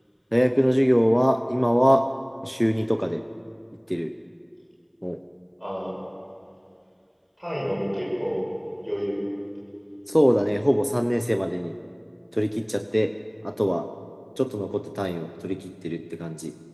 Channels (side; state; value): both; identical; correlation 1.00